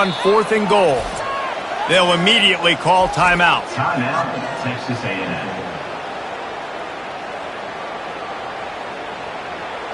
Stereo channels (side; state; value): both; identical; correlation 1.00